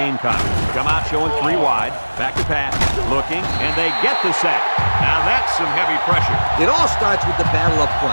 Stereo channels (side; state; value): both; inverted; correlation -1.00